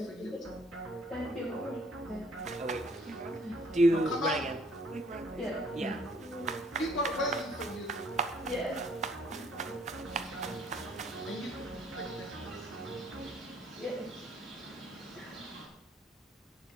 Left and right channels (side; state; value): both; normal; correlation 0.61